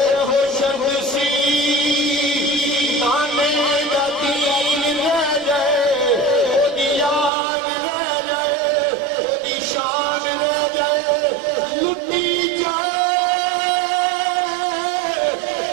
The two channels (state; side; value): drops out; left; at 7.3 s